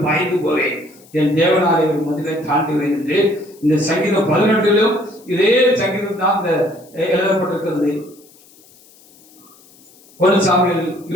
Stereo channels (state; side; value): noise; left; hiss, 27 dB below the sound